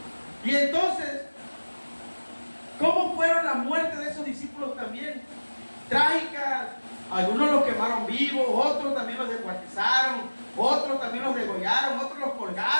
Y entonces, ¿cómo fueron las muertes de esos discípulos también? Trágicas. Algunos los quemaron vivos, otros también los descuartizaron, otros también los degollaron, otros los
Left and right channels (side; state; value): both; inverted; correlation -1.00